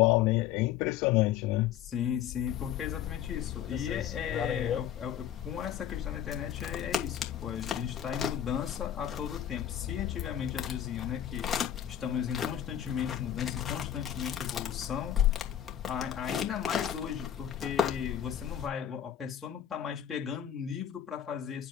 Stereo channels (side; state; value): right; quieter; 10.2 dB